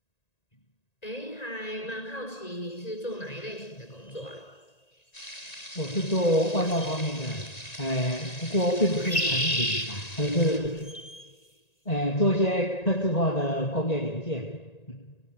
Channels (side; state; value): right; late; 1.9 ms